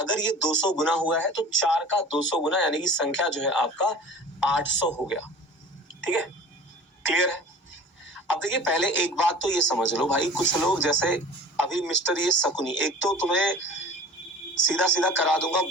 ये 200 गुना हुआ है तो 4 का 200 गुना यानी कि संख्या जो है आपका 800 हो गया। ठीक है, क्लियर है। अब देखिए पहले एक बात तो ये समझ लो भाई, कुछ लोग जैसे अभी मिस्टर ये शकुनी, एक तो तुम्हें सीधा सीधा करा दूंगा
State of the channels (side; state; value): both; normal; correlation 0.42